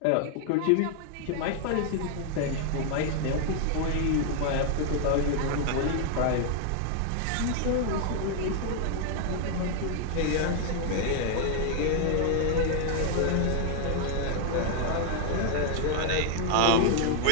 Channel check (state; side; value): different; both; correlation 0.00